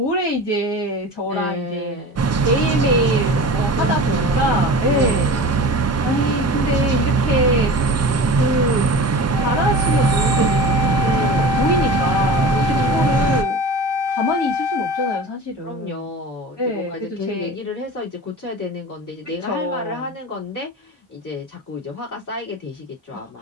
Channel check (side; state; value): both; normal; correlation 0.34